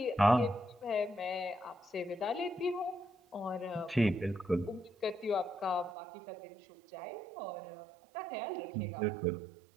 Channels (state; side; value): drops out; left; at 6.0 s